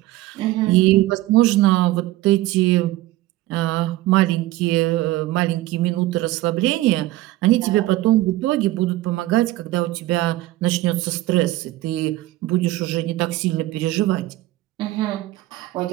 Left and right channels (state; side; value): quieter; left; 16.6 dB